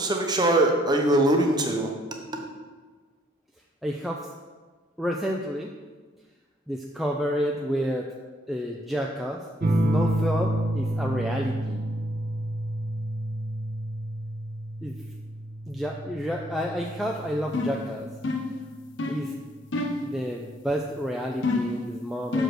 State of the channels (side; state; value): both; normal; correlation 0.66